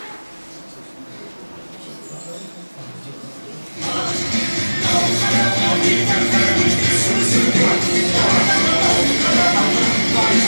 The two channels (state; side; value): inverted; both; correlation -1.00